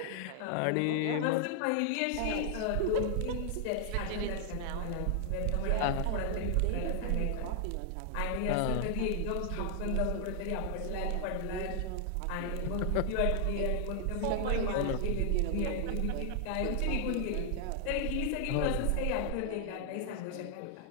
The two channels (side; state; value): both; different; correlation 0.00